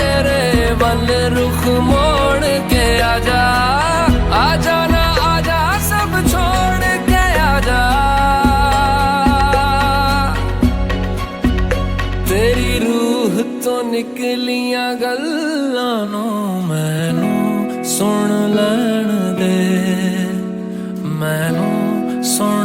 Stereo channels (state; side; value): identical; both; correlation 1.00